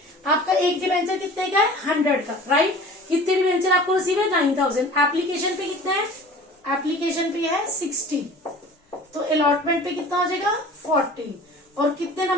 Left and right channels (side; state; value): both; normal; correlation 0.43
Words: आपका एक डिबेंचर कितने का है 100 का. राइट, कितने डिबेंचर आपको रिसीव है 9,000. एप्लीकेशन पे कितना है, एप्लीकेशन पे है 60. तो अलॉटमेंट पे कितना हो जाएगा 40. और कितने